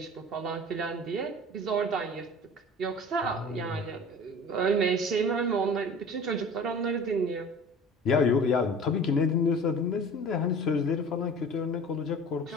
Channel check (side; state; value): both; normal; correlation 0.41